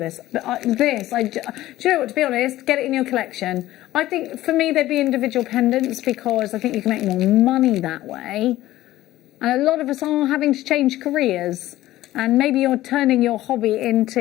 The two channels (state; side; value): quieter; right; 15.4 dB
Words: this. But do you know what, to be honest, get it in your collection. I think for me they'd be individual pendants because I think you can make more money that way. And a lot of us are having to change careers. And maybe you're turning your hobby into